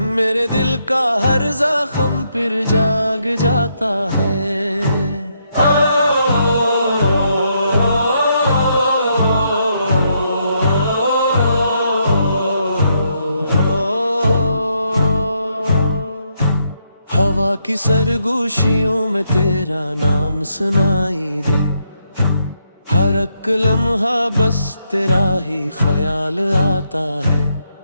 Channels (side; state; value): both; inverted; correlation -0.77